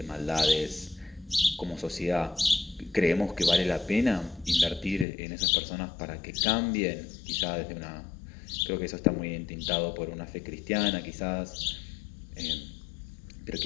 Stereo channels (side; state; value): right; drops out; at 5.1 s